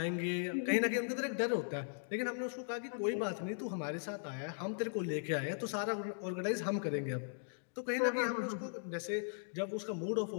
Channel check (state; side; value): silent; right; digital silence